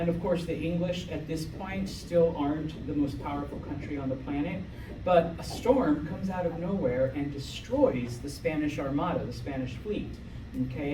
of course, the English at this point still aren't the most powerful country on the planet. But a storm comes out of nowhere and destroys the Spanish Armada, the Spanish fleet,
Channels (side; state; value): both; identical; correlation 1.00